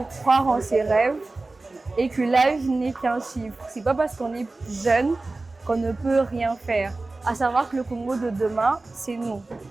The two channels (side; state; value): left; quieter; 3.3 dB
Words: croire en ses rêves et que l'âge n'est qu'un chiffre. C'est pas parce qu'on est jeune qu'on ne peut rien faire. À savoir que le Congo de demain, c'est nous.